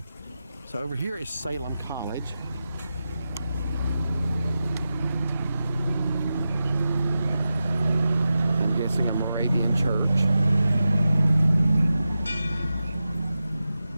So over here is Salem College. I'm guessing a Moravian church.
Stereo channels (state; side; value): inverted; both; correlation -0.91